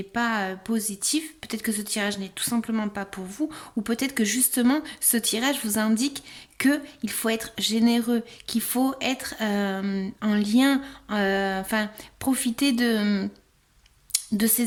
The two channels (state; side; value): identical; both; correlation 1.00